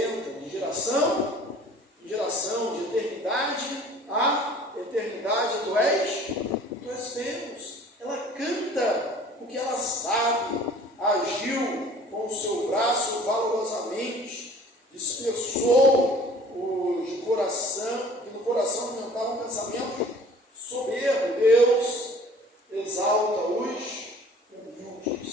de geração em geração, de eternidade a eternidade, tu és Deus. Ela canta o que ela sabe, agiu com o seu braço valorosamente, dispersou os coração, que no coração alimentavam pensamentos soberbos. Deus exalta os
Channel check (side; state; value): both; normal; correlation 0.49